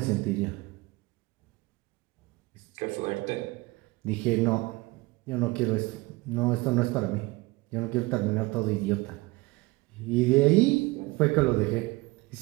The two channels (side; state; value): left; quieter; 22.4 dB